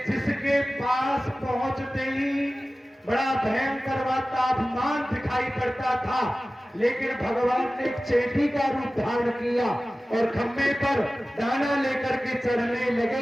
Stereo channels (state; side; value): normal; both; correlation 0.96